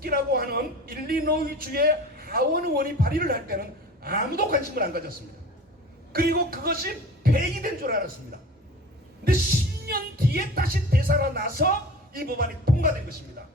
하는 일리노이주의 하원 의원이 발의를 할 때는 아무도 관심을 안 가졌습니다. 그리고 그것이 폐기된 줄 알았습니다. 근데 10년 뒤에 다시 되살아나서 이 법안이 통과된 것입니다.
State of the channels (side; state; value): both; normal; correlation 0.38